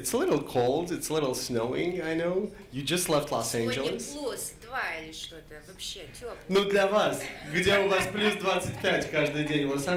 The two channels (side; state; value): both; identical; correlation 1.00